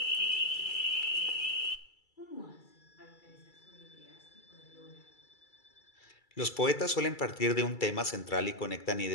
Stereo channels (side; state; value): right; late; 2.3 ms